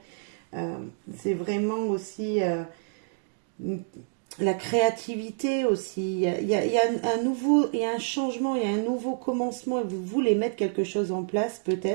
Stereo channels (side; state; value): left; silent; digital silence